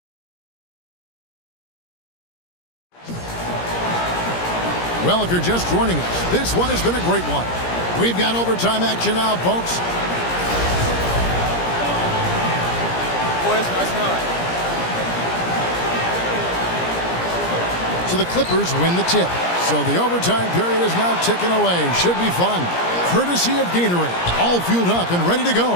Well, if you're just joining us, this one has been a great one. We've got overtime action now, folks. Boys, nice night. So the Clippers win the tip. So the overtime period is now ticking away. Should be fun. Courtesy of Gatorade. All fueled up and ready to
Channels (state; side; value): late; right; 17 ms